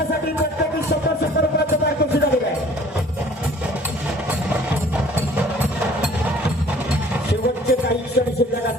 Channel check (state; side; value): normal; both; correlation 0.52